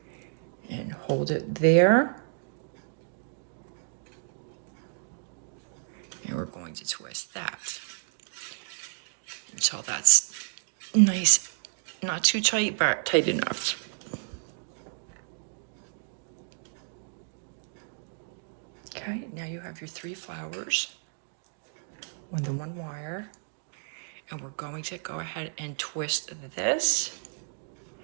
and hold it there. And we're going to twist that until that's nice, not too tight, but tight enough. Okay, now you have your 3 flowers on the 1 wire, and we're going to go ahead and twist this.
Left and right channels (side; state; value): left; silent; digital silence